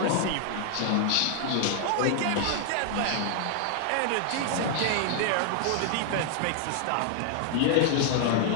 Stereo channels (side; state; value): both; different; correlation 0.00